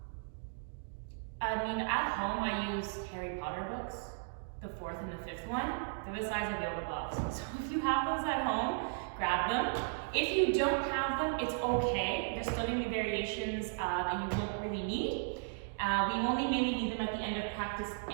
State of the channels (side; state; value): left; silent; digital silence